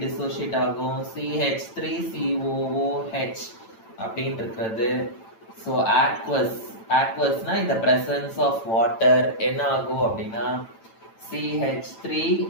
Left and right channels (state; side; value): late; right; 9.0 ms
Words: dissociate ஆகும், CH3COOH அப்படின்னு இருக்கிறது. So aqueous னா in the presence of water என்ன ஆகும் அப்படின்னா